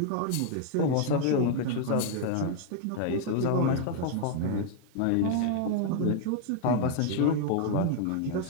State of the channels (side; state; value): both; different; correlation 0.00